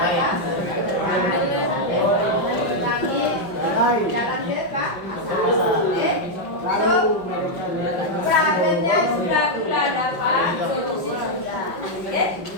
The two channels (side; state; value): right; late; 5.5 ms